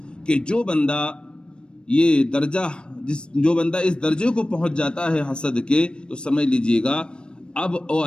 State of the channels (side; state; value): right; late; 0.054 ms